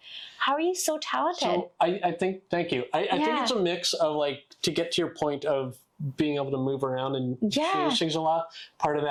how are you so talented? So I think, thank you. I think it's a mix of like, to get to your point of being able to move around and change things a lot. Part of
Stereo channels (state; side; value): identical; both; correlation 1.00